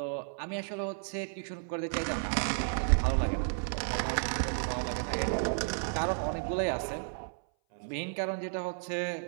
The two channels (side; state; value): left; silent; 56 dB below the other